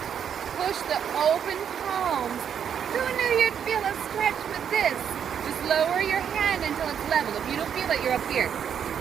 Push the open palms. Who knew you'd feel a stretch with this? Just lower your hand until it's level. If you don't feel it, you're up here.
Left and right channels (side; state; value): left; quieter; 8.2 dB